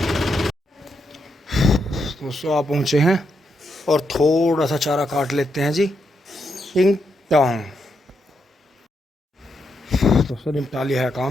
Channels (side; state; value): both; normal; correlation 0.81